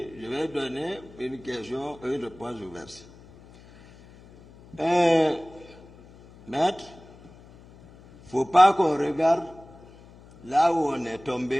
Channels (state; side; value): noise; left; hum, 23 dB below the sound